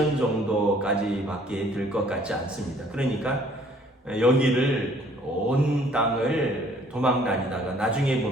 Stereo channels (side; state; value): both; normal; correlation 0.59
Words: 정도까지밖에 될 것 같지 않습니다. 그러니까 여기를 온 땅을 도망 다니다가 나중에